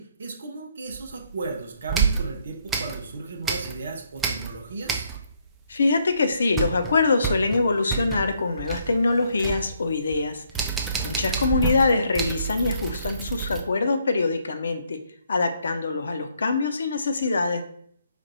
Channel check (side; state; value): both; inverted; correlation -0.70